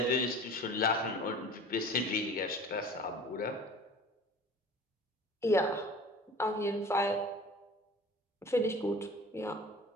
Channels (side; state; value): both; normal; correlation 0.42